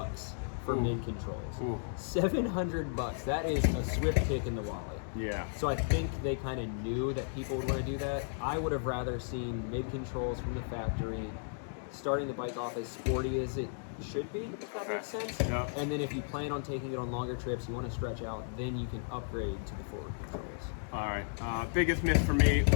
for mid controls. $700. That is a swift kick in the wallet. Yeah. So I think they kind of knew that people would want to do that. I would have rather seen mid controls from the factory, starting the bike off as sporty as it should be, if that makes sense. Yep. And then if you plan on taking it on longer trips, you want to stretch out, then you can upgrade to the forward controls. All right. Biggest miss for me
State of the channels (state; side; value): silent; right; digital silence